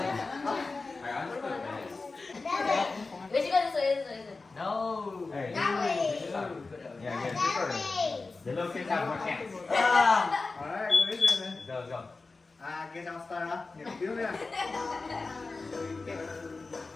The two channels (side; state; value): right; quieter; 3.8 dB